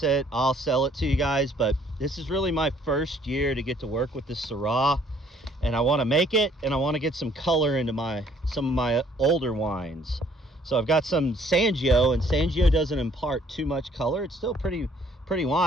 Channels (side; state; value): both; normal; correlation 0.62